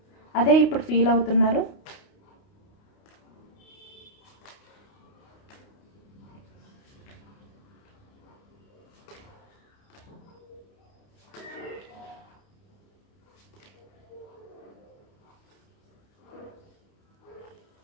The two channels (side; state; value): right; late; 29 ms